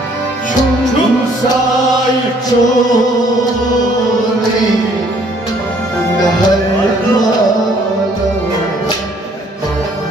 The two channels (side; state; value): both; normal; correlation 0.62